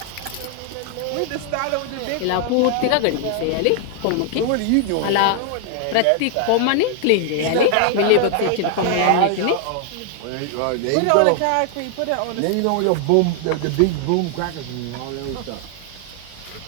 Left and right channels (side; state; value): both; different; correlation 0.00